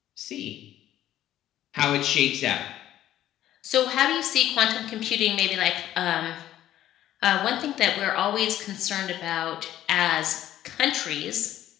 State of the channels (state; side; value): quieter; right; 12.7 dB